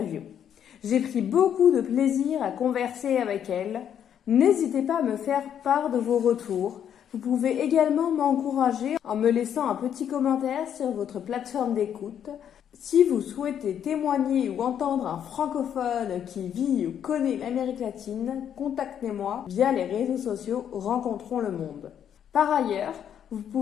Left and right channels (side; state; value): right; quieter; 9.1 dB